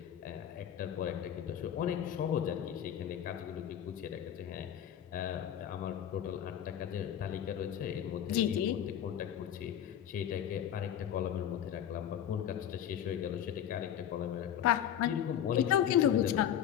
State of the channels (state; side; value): quieter; right; 9.9 dB